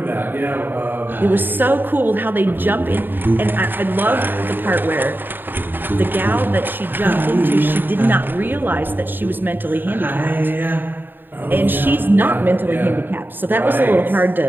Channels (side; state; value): left; late; 0.094 ms